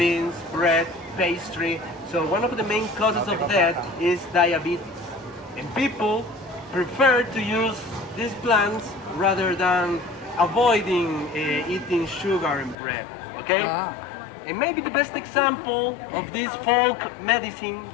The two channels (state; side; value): drops out; right; at 12.8 s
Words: bread, pastry. So one of the main causes of that is diabetes. And people prefer to use these plants rather than avoiding eating sugar and bread. Okay? And maybe the best example of this folk medicine